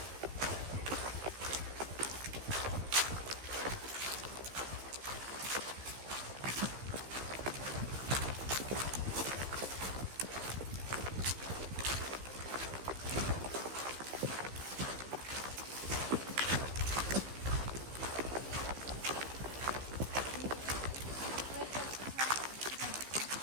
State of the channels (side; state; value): left; late; 15 ms